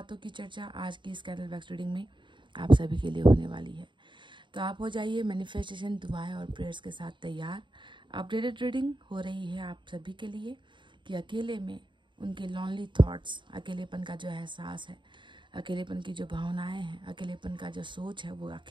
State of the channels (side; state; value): left; late; 0.23 ms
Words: की चर्चा आज की इस कैंडल वैक्स रीडिंग में आप सभी के लिए होने वाली है। तो आप हो जाइए मैनिफेस्टेशन, दुआएं और प्रेयर्स के साथ तैयार। अपडेटेड रीडिंग हो रही है आप सभी के लिए कि अकेले में उनके लॉनली थॉट्स, अकेलेपन का जो एहसास है, अकेलेपन की जो भावनाएं हैं, अकेलेपन का जो सोच है वो